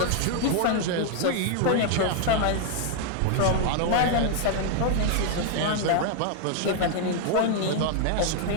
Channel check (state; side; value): different; both; correlation 0.00